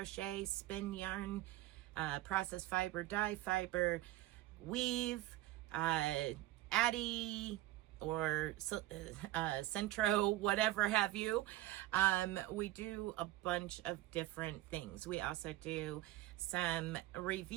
spin yarn, process fiber, dye fiber, weave, Addy or Centro, whatever have you. We do a bunch of different things. We also do some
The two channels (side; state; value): left; quieter; 16.2 dB